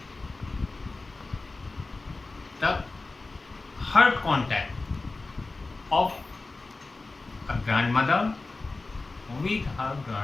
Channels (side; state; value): right; quieter; 3.4 dB